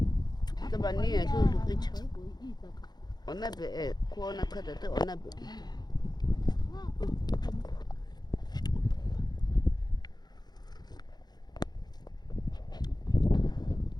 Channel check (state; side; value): late; right; 0.20 ms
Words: Tabani tu kicha. Onabe kuona kata te onabe.